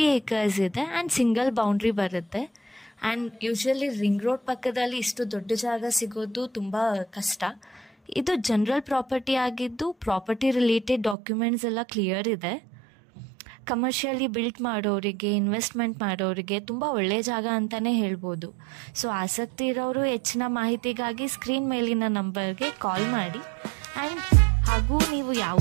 acres ಇದೆ ಆ್ಯಂಡ್ ಸಿಂಗಲ್ ಬೌಂಡ್ರಿ ಬರುತ್ತೆ. ಆ್ಯಂಡ್ ಯೂಶ್ವಲಿ ರಿಂಗ್ ರೋಡ್ ಪಕ್ಕದಲ್ಲಿ ಇಷ್ಟು ದೊಡ್ಡ ಜಾಗ ಸಿಗೋದು ತುಂಬ ಕಷ್ಟ. ಇದು ಜನರಲ್ ಪ್ರಾಪರ್ಟಿ ಆಗಿದ್ದು, ಪ್ರಾಪರ್ಟಿ ರಿಲೇಟೆಡ್ ಡಾಕ್ಯುಮೆಂಟ್ಸ್ ಎಲ್ಲ ಕ್ಲಿಯರ್ ಇದೆ. ಕಮರ್ಷಿಯಲಿ ಬಿಲ್ಟ್ ಮಾಡೋರಿಗೆ, ಇನ್ವೆಸ್ಟ್ಮೆಂಟ್ ಮಾಡೋರಿಗೆ ತುಂಬ ಒಳ್ಳೆಯ ಜಾಗ ಅಂತಲೇ ಹೇಳ್ಬೋದು. ಸೊ ಆಸಕ್ತಿ ಇರೋರು ಹೆಚ್ಚಿನ ಮಾಹಿತಿಗಾಗಿ ಸ್ಕ್ರೀನ್ ಮೇಲಿನ ನಂಬರ್ಗೆ ಕಾಲ್ ಮಾಡಿ. ಆ್ಯಂಡ್ ಹಾಗೂ ನೀವು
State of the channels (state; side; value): drops out; left; at 11.2 s